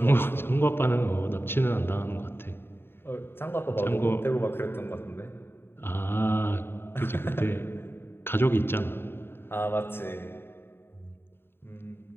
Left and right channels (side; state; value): right; late; 0.11 ms